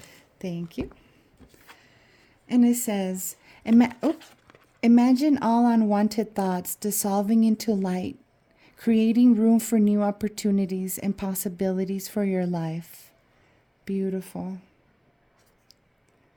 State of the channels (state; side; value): identical; both; correlation 1.00